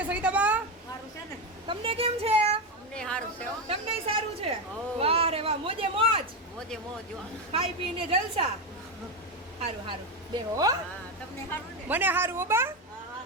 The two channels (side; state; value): both; normal; correlation 0.12